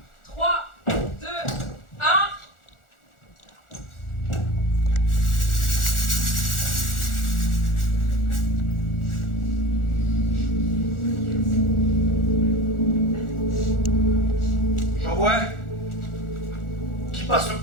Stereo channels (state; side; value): late; right; 1.4 ms